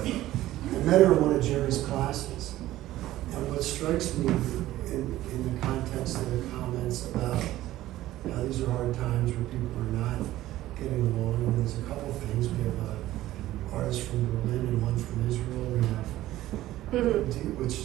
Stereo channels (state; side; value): quieter; left; 15.1 dB